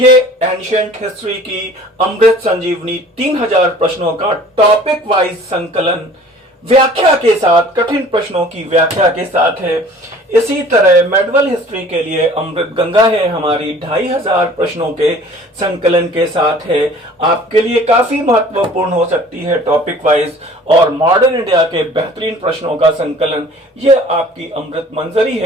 एंशिएंट हिस्ट्री की अमृत संजीवनी 3000 प्रश्नों का टॉपिक वाइज संकलन व्याख्या के साथ, कठिन प्रश्नों की व्याख्या के साथ है। इसी तरह मेडिवल हिस्ट्री के लिए अमृत गंगा है हमारी, 2500 प्रश्नों के संकलन के साथ है। आपके लिए काफी महत्वपूर्ण हो सकती है टॉपिक वाइज। और मॉडर्न इंडिया के बेहतरीन प्रश्नों का संकलन, ये आपकी अमृत मंजरी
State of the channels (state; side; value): normal; both; correlation 0.49